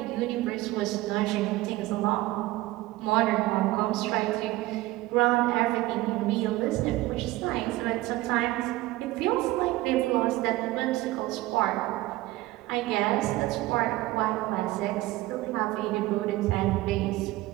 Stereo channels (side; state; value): left; quieter; 18.1 dB